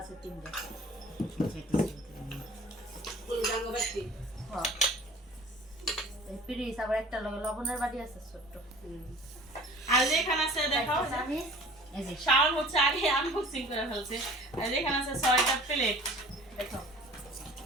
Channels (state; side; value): normal; both; correlation 0.46